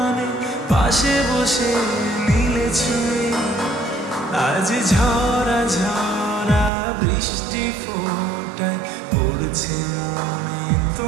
পাশে বসে নিলে ছুঁয়ে। আজ ঝরা ঝরা বৃষ্টি ফোটায় পড়ছে মনে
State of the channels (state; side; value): drops out; left; at 6.7 s